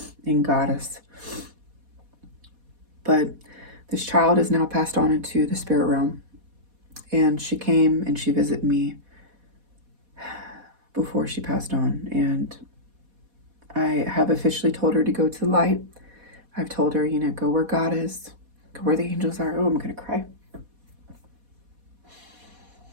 and goddess. But this child is now passed on into the spirit realm. And she came and she visited me before she passed on. And I have officially told her to go to the light. I've told her, go where God is, go where the angels are. Oh, I'm going to cry.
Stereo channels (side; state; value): left; late; 4.1 ms